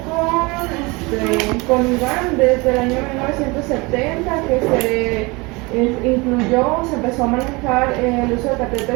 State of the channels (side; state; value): left; quieter; 25.6 dB